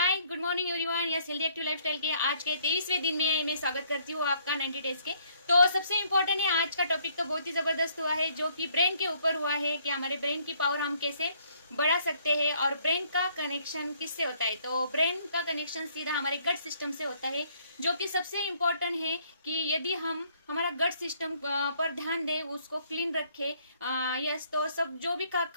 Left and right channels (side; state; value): both; inverted; correlation -0.65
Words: good morning everyone. Yes healthy active lifestyle के आज के 23वें दिन में मैं स्वागत करती हूँ आपका 90 डेज के। तो सबसे इम्पोर्टेंट है आज का टॉपिक तो बहुत ही ज़बरदस्त हुआ है जो कि ब्रेन के ऊपर हुआ है कि हमारे ब्रेन की पावर हम कैसे बढ़ा सकते हैं और ब्रेन का कनेक्शन किससे होता है। तो ब्रेन का कनेक्शन सीधा हमारे गट सिस्टम से होता है जो कि सबसे इम्पोर्टेंट है कि यदि हम हमारा गट सिस्टम पर ध्यान दें, उसको क्लीन रखें। यस तो सब जो भी